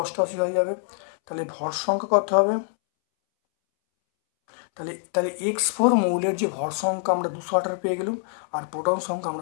88 হয়ে যাবে, তাহলে ভর সংখ্যা কত হবে, তাহলে তাহলে X4 মৌলের যে ভর সংখ্যা আমরা 218 পেয়ে গেলাম, আর প্রোটন সংখ্যা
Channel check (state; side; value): silent; right; 62 dB below the other